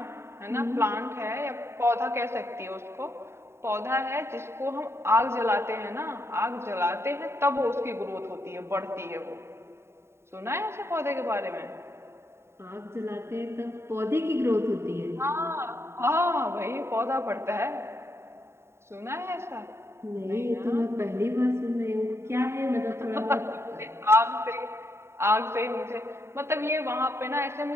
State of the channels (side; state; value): left; late; 0.13 ms